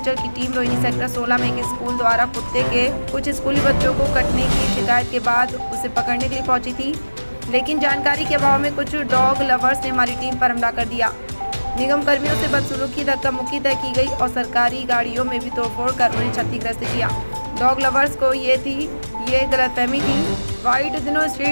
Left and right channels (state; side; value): inverted; both; correlation -1.00